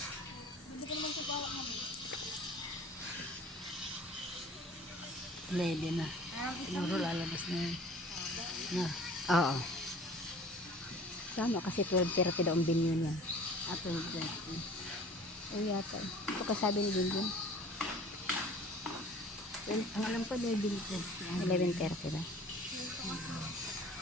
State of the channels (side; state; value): both; normal; correlation 0.47